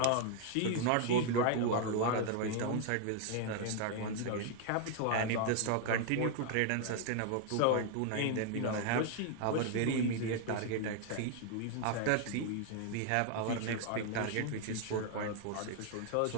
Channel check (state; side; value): different; both; correlation 0.00